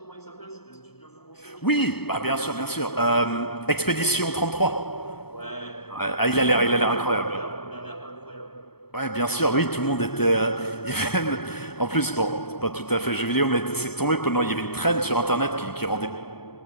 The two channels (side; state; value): right; late; 0.96 ms